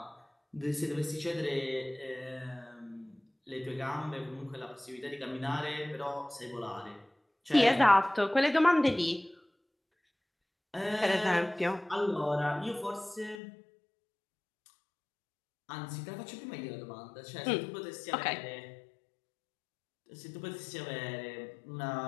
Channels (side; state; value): right; drops out; at 13.4 s